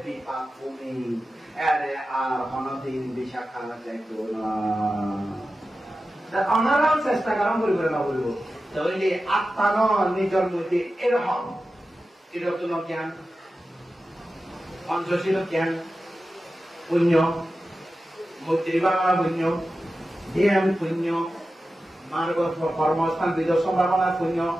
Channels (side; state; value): both; normal; correlation 0.93